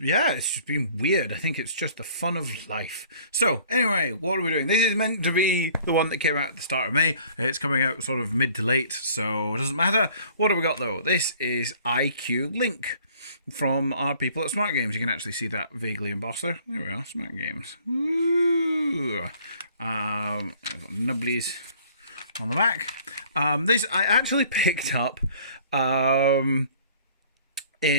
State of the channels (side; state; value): both; inverted; correlation -0.54